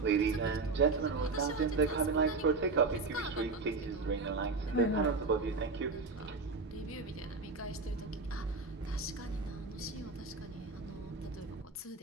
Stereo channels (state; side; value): quieter; left; 4.0 dB